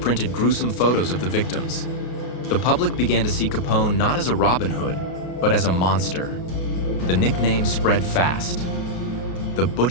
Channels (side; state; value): right; late; 33 ms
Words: gruesome photos of the victims. The public began to see Capone not as a Robin Hood, but as a monster. The nickname spread fast: the